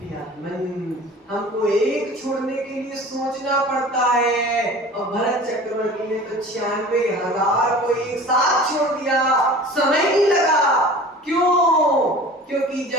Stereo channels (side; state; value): both; normal; correlation 0.41